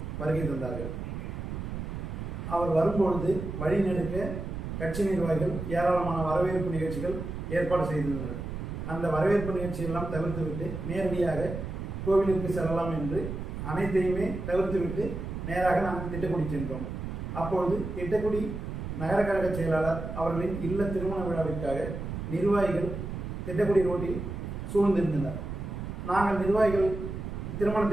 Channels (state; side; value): noise; right; rumble, 6 dB below the sound